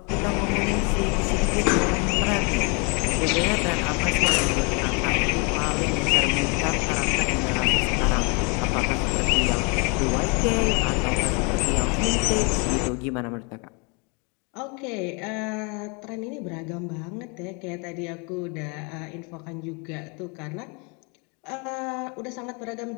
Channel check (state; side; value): quieter; right; 33.1 dB